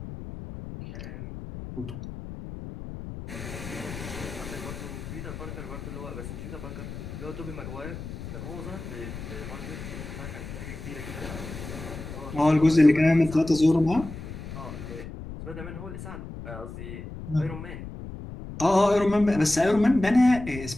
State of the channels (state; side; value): noise; left; rumble, 10 dB below the sound